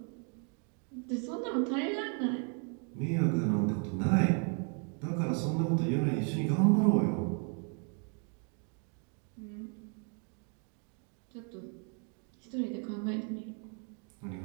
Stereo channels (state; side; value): quieter; left; 39.4 dB